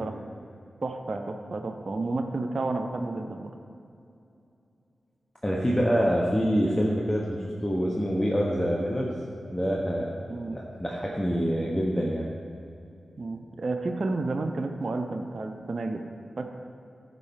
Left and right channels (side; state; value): both; normal; correlation 0.95